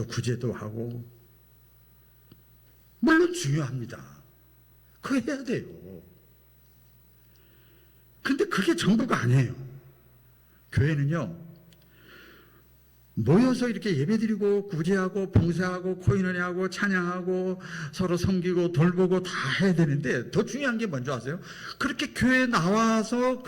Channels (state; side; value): identical; both; correlation 1.00